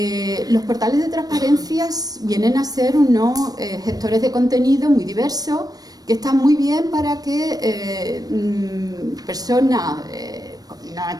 Los portales de transparencia vienen a ser unos gestores de contenido muy diversos que están muy bien para que personas no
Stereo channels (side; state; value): left; late; 0.19 ms